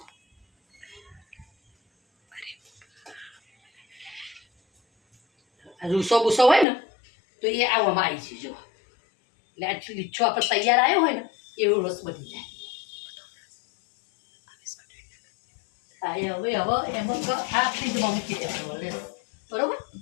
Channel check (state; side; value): drops out; right; at 6.7 s